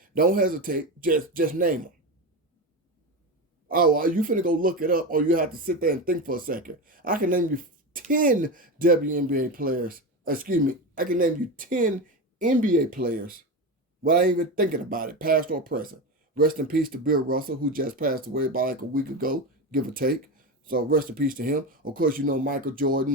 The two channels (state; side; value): normal; both; correlation 0.19